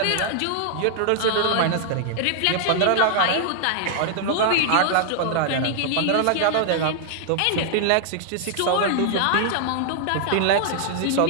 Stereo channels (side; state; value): both; different; correlation -0.01